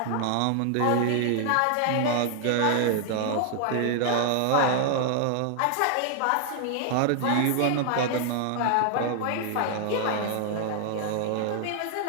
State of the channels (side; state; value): both; different; correlation 0.00